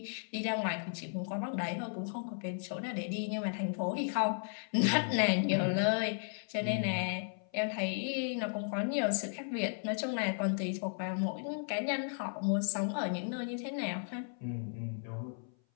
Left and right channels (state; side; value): silent; right; 54 dB below the other